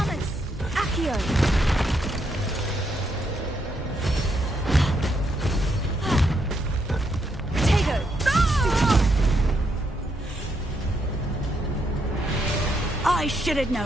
Accio! Potato! I should have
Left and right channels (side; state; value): both; normal; correlation 0.77